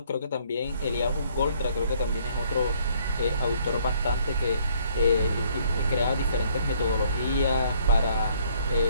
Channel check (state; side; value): inverted; both; correlation -0.64